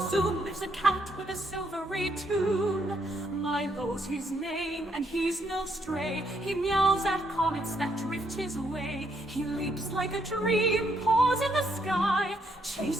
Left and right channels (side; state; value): both; normal; correlation 0.74